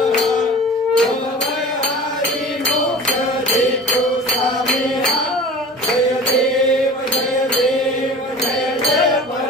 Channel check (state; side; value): normal; both; correlation 0.39